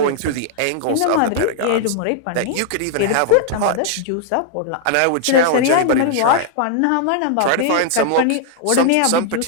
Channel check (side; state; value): both; different; correlation -0.01